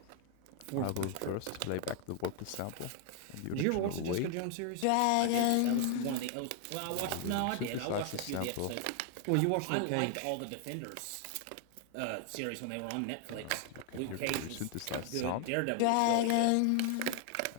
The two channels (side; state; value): both; different; correlation 0.00